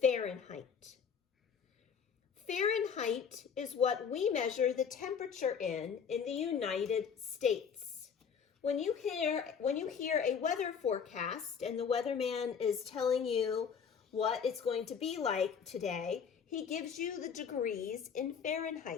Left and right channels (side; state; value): right; quieter; 6.8 dB